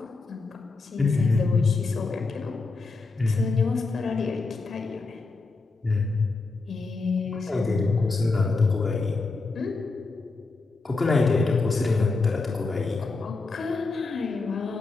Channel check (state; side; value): quieter; right; 3.8 dB